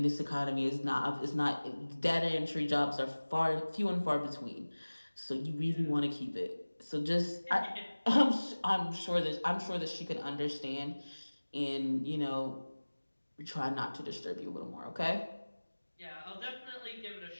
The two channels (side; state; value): both; inverted; correlation -1.00